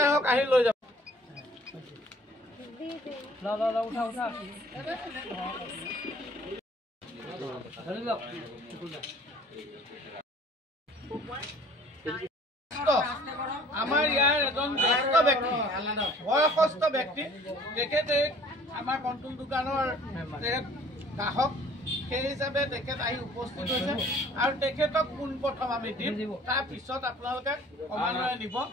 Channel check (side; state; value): both; normal; correlation 0.52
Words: হওক আহি লৈ যাব। আমাৰ ইয়াৰ এজন জ্যেষ্ঠ ব্যক্তি, বয়সস্থ ব্যক্তি, তেখেতে আমাৰ কণ্ট্ৰোল দোকানৰ তেখেত গ্ৰাহক, সেই হিচাপে তেখেত আহি উপস্থিত হৈছে আৰু তেখেতক পোনপ্ৰথম আমি দিম, তাৰপিছত আপোনালোকে ক্ৰমান্বয়ে নিব,